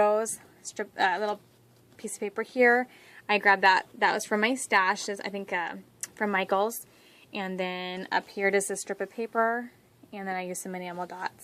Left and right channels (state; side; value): identical; both; correlation 1.00